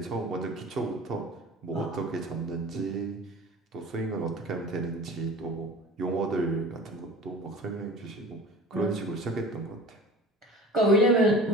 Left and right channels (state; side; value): normal; both; correlation 0.40